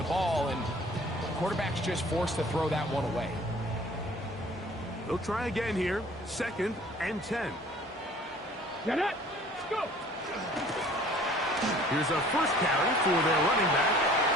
ball, and the quarterback's just forced to throw that one away. They'll try again here. 2nd and 10. Get it! Let's go! Here's a first carry for their running back.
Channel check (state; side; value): normal; both; correlation 0.51